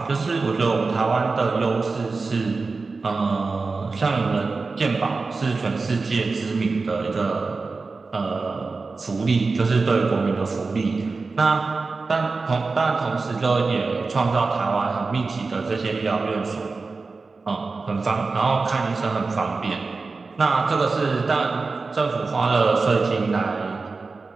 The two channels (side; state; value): left; quieter; 4.1 dB